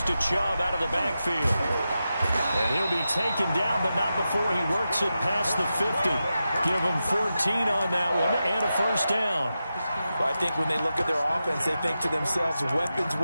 to Chubb out of the backfield. And he'll be taken down, but not before he works it past the 50. Give him 14 on that one and a first down. Well, I think when they look at their offense, they think to themselves,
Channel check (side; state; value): both; inverted; correlation -0.90